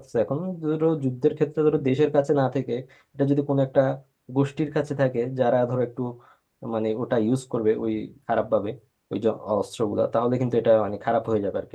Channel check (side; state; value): both; identical; correlation 1.00